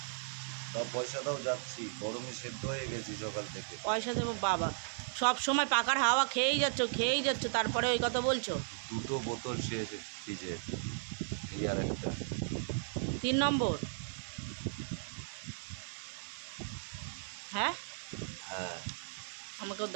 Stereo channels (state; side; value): silent; left; digital silence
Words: সব পয়সা দাও, যাচ্ছি। গরমে সেদ্ধ হয়ে গেছি সকাল থেকে। পয়সা দেবো বাবা, সব সময় পাকার হাওয়া খেয়েই যাচ্ছ, তারপরে ওই কথা বলছো। দুটো বোতল শেষ ফ্রিজের, এই আর একটা। 3 নম্বর? হ্যাঁ, হ্যাঁ, আমাকেও